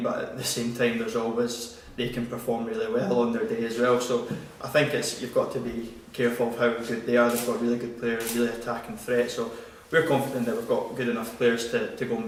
but at the same time there's always they can perform really well on their day as well. So I think you've got to be careful of how good they are. They've got really good players, really attacking threat, so we're confident that we've got good enough players to go and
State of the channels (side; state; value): both; identical; correlation 1.00